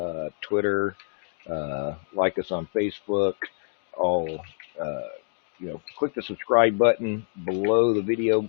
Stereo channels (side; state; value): right; silent; digital silence